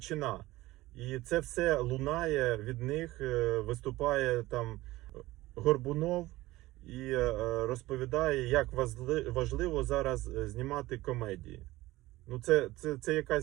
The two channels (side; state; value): left; quieter; 18.2 dB